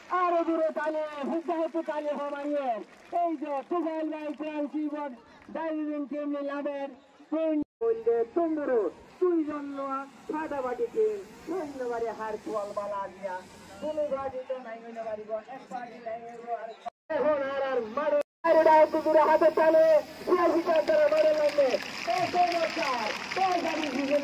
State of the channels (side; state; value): both; identical; correlation 1.00